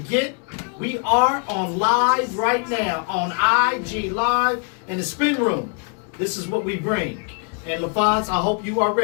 we are on live right now on IG Live in the Spin Room. This is what we bring. And LaFonz, I hope you are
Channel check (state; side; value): quieter; right; 38.6 dB